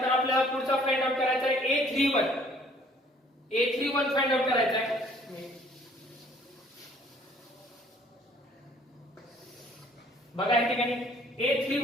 आपल्याला पुढचा फाइंड आउट करायचा आहे a31 फाइंड आउट करायचा आहे. बघा या ठिकाणी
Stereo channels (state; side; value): normal; both; correlation 0.58